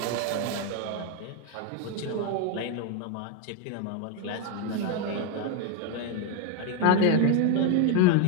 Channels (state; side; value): different; both; correlation 0.01